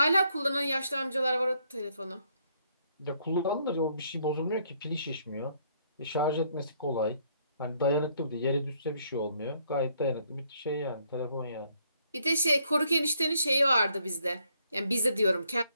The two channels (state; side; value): inverted; both; correlation -0.69